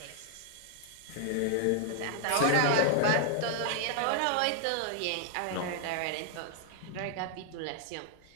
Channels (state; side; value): different; both; correlation 0.00